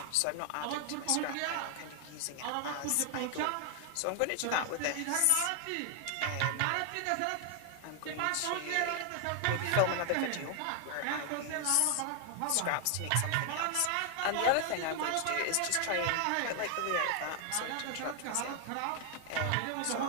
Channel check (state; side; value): different; both; correlation 0.00